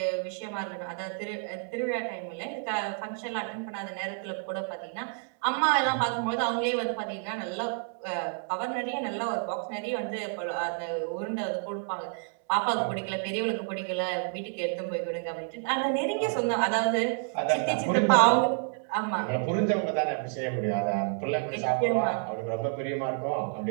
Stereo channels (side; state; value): left; silent; 58 dB below the other